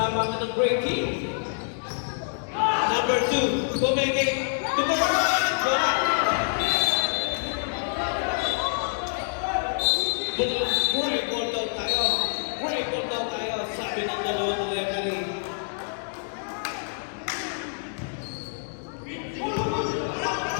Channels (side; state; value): right; silent; 60 dB below the other